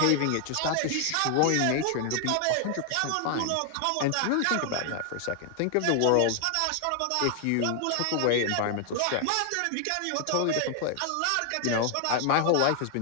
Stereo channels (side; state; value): both; different; correlation 0.00